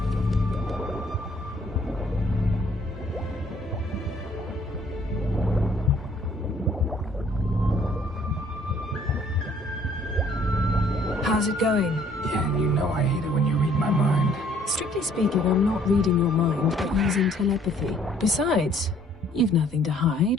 How's it going? Yeah, and you know I hate it when you read my mind. Strictly speaking, I'm not reading your mind, but using telepathy. Besides, you've nothing to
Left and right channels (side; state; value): both; normal; correlation 0.61